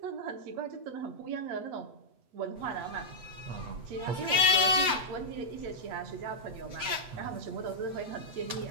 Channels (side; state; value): left; late; 8.2 ms